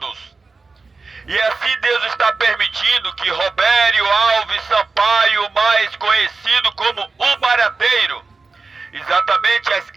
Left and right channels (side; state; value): left; quieter; 4.1 dB